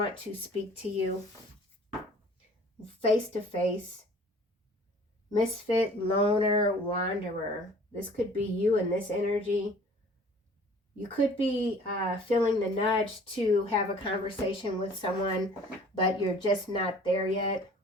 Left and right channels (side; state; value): both; normal; correlation 0.50